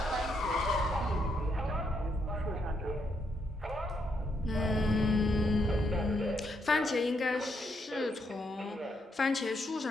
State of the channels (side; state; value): both; normal; correlation 0.77